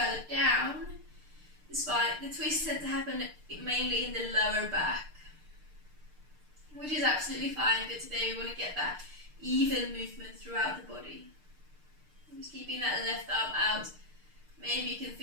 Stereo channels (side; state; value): left; late; 6.6 ms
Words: down, the twists tend to happen mainly in the lower back, which is absolutely fine, but today we want to get that even movement throughout the body. Just keeping that left arm out. Maybe you can